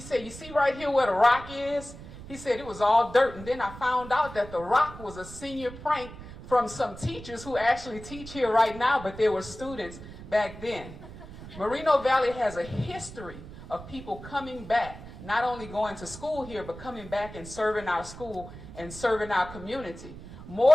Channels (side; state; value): right; noise; rumble, 14 dB below the sound